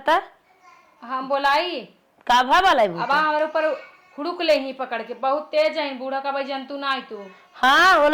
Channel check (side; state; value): both; identical; correlation 1.00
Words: हम बोलाई का भा बलाई अब हमारे ऊपर हुड़ुक ले ही पकड़ के बहुत तेज है बूढ़ा का भाई जंतु ना आई तू। हाँ